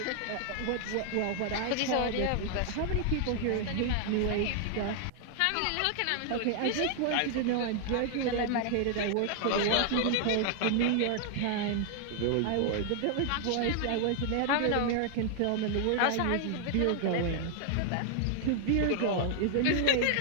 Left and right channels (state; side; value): different; both; correlation 0.00